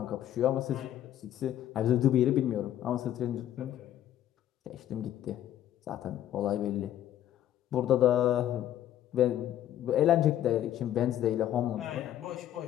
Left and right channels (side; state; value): right; quieter; 11.8 dB